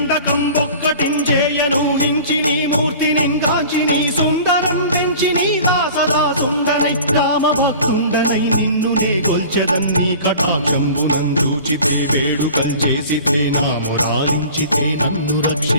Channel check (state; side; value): inverted; both; correlation -0.42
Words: ఒక్కటించేయనూహించి నీ మూర్తి నింగాంచి నీ సుందరం పెంచి నీ దాసదా సుందరై రామభక్తుండనై నిన్ను నే కొల్చెదన్ నీ కటాక్ష